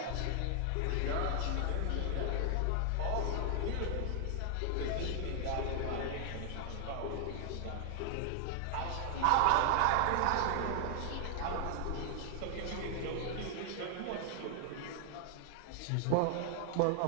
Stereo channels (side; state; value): both; different; correlation 0.00